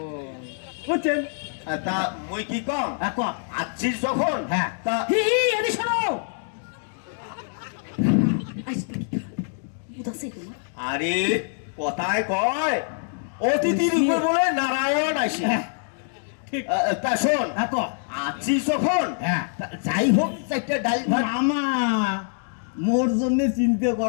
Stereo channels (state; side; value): silent; right; digital silence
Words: বুঝছেন? তা মুই কি কম এখন আছিস যখন, হ্যাঁ। তা হি হি এদি শোনো বুঝাছে তোমার আরে কথায় কয় অতিথির উপর বলে নারায়ণ আসে। ঠিক। তা শোন, এখন আছিস যখন, হ্যাঁ। তা যাই হোক একটা ডাল ভাত। মামা মোর জন্য চিন্তা